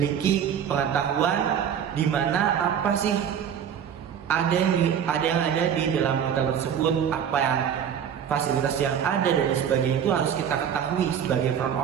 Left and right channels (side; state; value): left; quieter; 8.5 dB